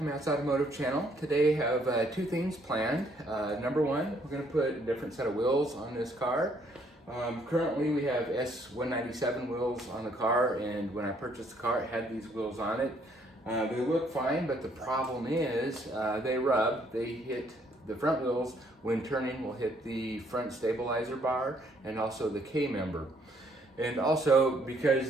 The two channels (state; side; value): normal; both; correlation 0.67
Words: Matt's Automotive Channel. Today I have two things planned. Number one, we're going to put a different set of wheels on this car. Currently we have S197 wheels on the car, and when I purchased the car it had these wheels on it. They look fine, but the problem is they rub. They hit the front wheels when turning, will hit the front stabilizer bar and also the K-member. And also